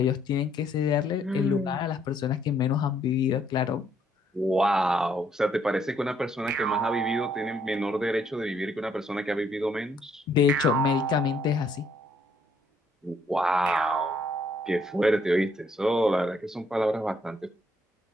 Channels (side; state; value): both; normal; correlation 0.68